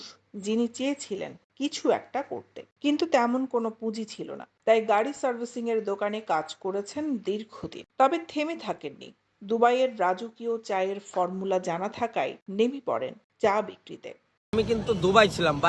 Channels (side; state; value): both; identical; correlation 1.00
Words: যিনি চেয়েছিলেন কিছু একটা করতে, কিন্তু তেমন কোনো পুঁজি ছিল না। তাই গাড়ি সার্ভিসিং এর দোকানে কাজ করেছেন দীর্ঘদিন। তবে থেমে থাকেননি। দুবাইয়ের রাজকীয় চায়ের ফর্মুলা জানা থাকায় নেমে পড়েন চা বিক্রিতে। আমি কিন্তু দুবাই ছিলাম,